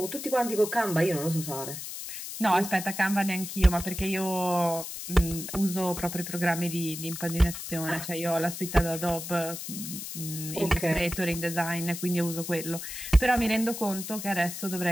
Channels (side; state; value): left; noise; hiss, 8 dB below the sound